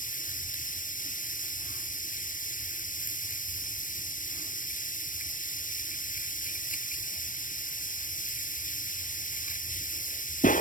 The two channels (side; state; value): right; late; 0.38 ms